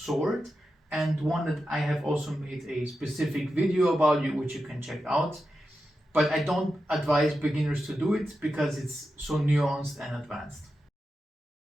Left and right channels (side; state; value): both; normal; correlation 0.90